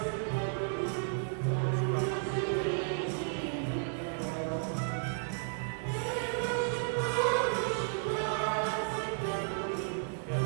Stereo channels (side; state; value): left; silent; digital silence